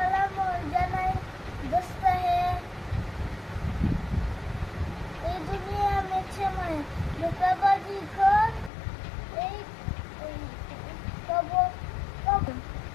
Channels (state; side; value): drops out; right; at 8.7 s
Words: জানাই দোস্ত হে। এই দুনিয়া में छे मैं धोखाबाजी